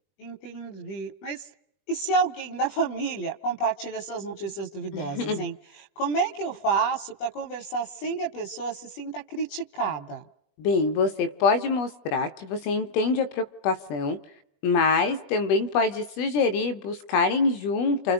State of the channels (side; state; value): right; late; 21 ms